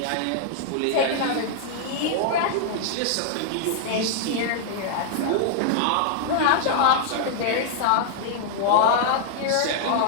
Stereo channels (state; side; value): different; both; correlation -0.01